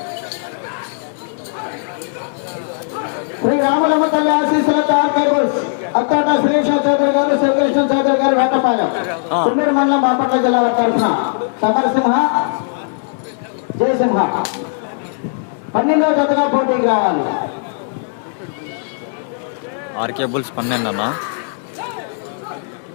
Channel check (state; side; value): silent; right; digital silence